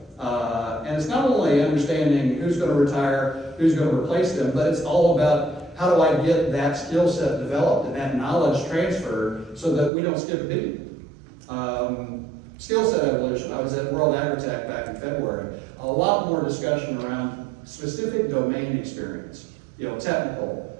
And it's not only understanding who's going to retire, who's going to replace them, but it's all about how do I get that skill set developed and that knowledge transferred so that we don't skip a beat. Skill set evolution. I was at World Agritech back in February. A lot more discussion around specific domain experience, technical,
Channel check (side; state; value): left; drops out; at 9.9 s